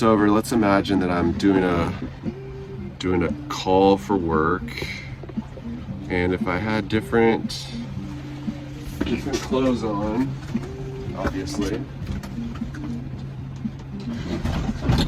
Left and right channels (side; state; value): both; identical; correlation 1.00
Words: over. Let's imagine that I'm doing a call for work, and if I had different clothes on, obviously.